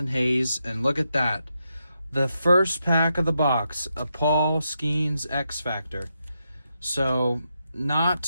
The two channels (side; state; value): both; inverted; correlation -0.84